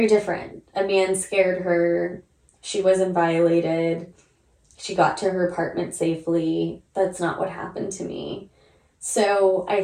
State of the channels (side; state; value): both; identical; correlation 1.00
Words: different. A man scared her. She wasn't violated. She got to her apartment safely. That's not what happened to me. So I